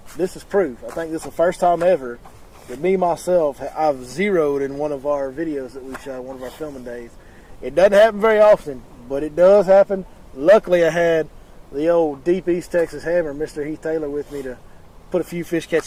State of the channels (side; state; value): both; identical; correlation 1.00